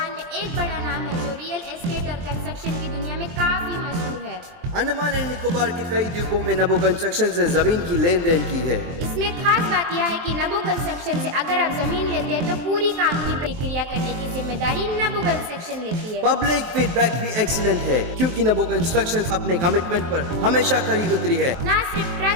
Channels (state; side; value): late; left; 23 ms